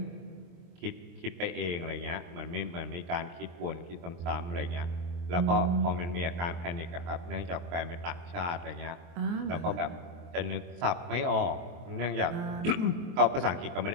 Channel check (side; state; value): left; late; 23 ms